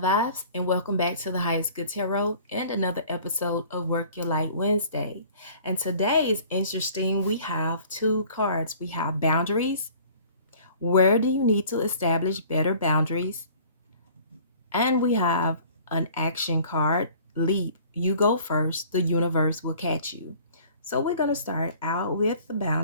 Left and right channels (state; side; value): inverted; both; correlation -0.50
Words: and welcome back to the Highest Good Tarot and another episode of Work Your Light Wednesday. And today is interesting. We have two cards. We have boundaries. Where do you need to establish better boundaries? And we have an action card, leap. You go first, the universe will catch you. So we're going to start out with the